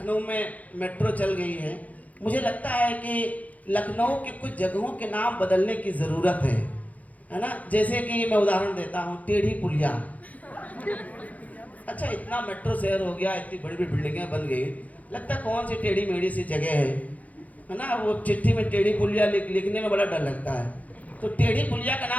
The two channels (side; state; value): right; late; 0.074 ms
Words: में मेट्रो चल गई है। मुझे लगता है कि लखनऊ के कुछ जगहों के नाम बदलने की ज़रूरत है ना। जैसे कि मैं उदाहरण देता हूँ, टेढ़ी पुलिया। अच्छा इतना मेट्रो शहर हो गया, इतनी बड़ी बड़ी बिल्डिंगें बन गई, लगता है कौन सी टेढ़ी मेढ़ी सी जगह है ना। वो चिट्ठी में टेढ़ी पुलिया लिखने में बड़ा डर लगता है, तो टेढ़ी पुलिया का